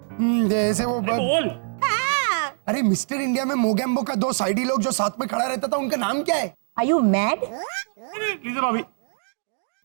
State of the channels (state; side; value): silent; left; digital silence